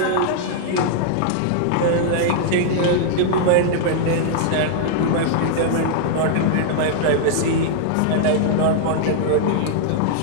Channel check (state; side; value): different; both; correlation -0.01